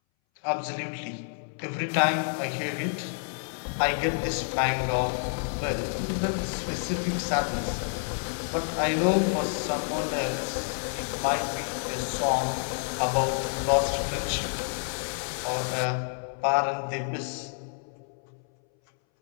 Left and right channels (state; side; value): silent; right; 59 dB below the other